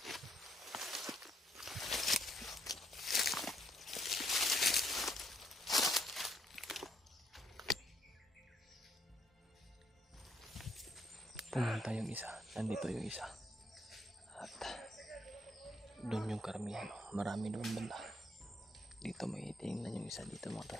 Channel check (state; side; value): normal; both; correlation 0.72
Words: Pumunta yung isa. Nandito yung isa. At doon yung karamihan. Marami doon banda. Dito may tingnan yung isa dito mga